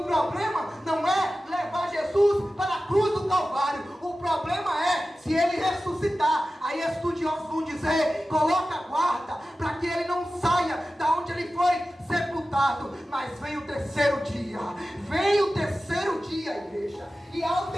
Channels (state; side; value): normal; both; correlation 0.95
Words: problema não é levar Jesus para a cruz do Calvário, o problema é se Ele ressuscitar. Aí estudiosos vão dizer: coloca a guarda para que Ele não saia da onde Ele foi sepultado. Mas vem o terceiro dia, igreja, e ao